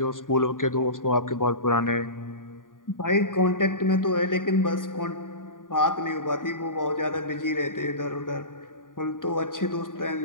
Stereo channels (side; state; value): right; late; 0.89 ms